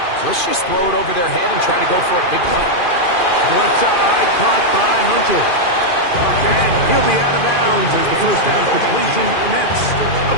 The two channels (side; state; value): right; late; 2.4 ms